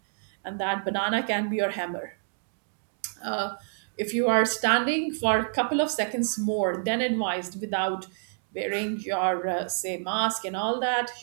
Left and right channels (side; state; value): left; silent; digital silence